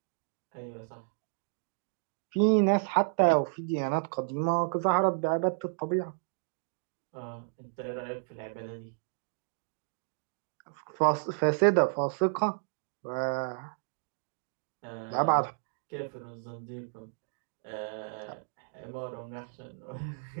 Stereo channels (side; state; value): left; silent; digital silence